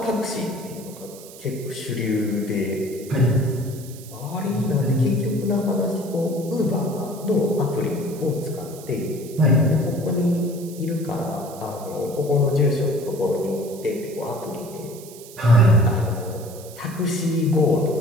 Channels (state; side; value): noise; right; hiss, 18 dB below the sound